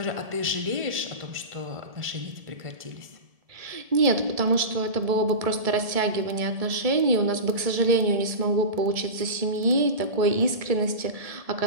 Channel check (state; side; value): late; left; 1.7 ms